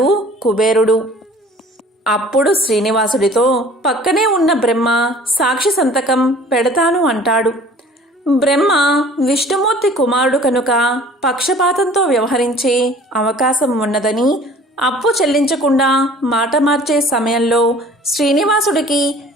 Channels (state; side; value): normal; both; correlation 0.49